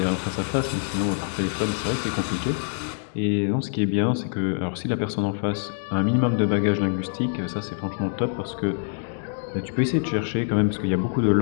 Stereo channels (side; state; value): right; silent; digital silence